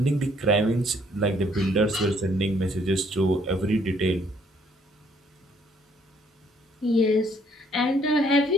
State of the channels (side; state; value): both; normal; correlation 0.65